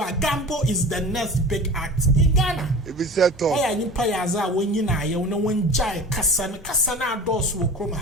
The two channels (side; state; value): both; normal; correlation 0.36